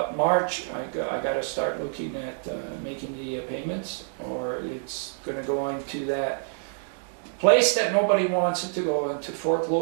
March I got to start looking at making the payments, or it's going to go into that place that nobody wants it to go into,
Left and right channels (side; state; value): left; silent; digital silence